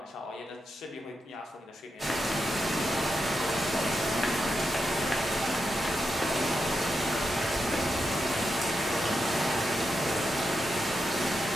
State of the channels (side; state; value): both; normal; correlation 0.86